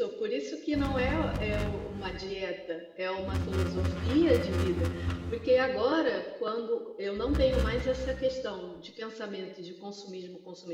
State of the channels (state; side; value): identical; both; correlation 1.00